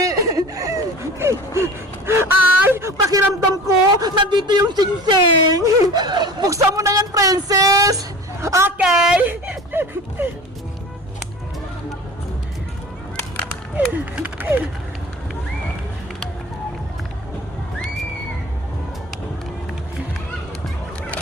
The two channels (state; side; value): normal; both; correlation 0.39